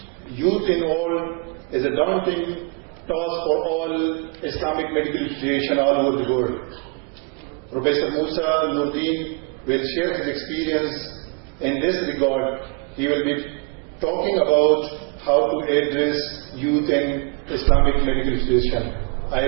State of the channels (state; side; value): quieter; left; 34.2 dB